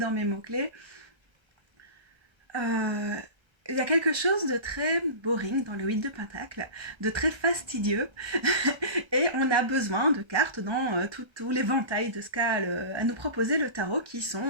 mes mots-clés. Euh, il y a quelque chose de très boring dans le 8 de Pentacle, de très fastidieux, et on a besoin de cartes dans tout l'éventail de ce qu'a à nous proposer le tarot, qui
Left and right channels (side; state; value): left; late; 1.3 ms